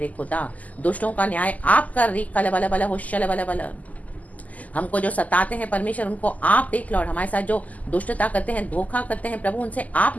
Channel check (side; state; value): right; late; 0.076 ms